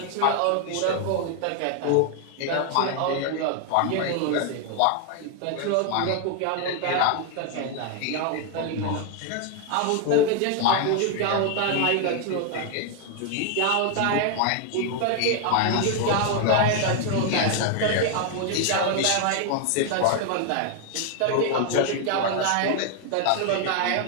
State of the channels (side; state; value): both; different; correlation 0.00